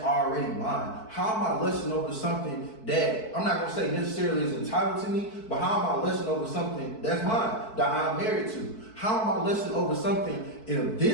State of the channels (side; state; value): right; late; 4.5 ms